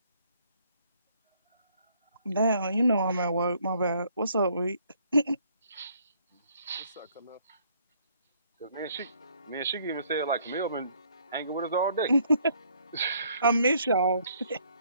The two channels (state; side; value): inverted; both; correlation -0.64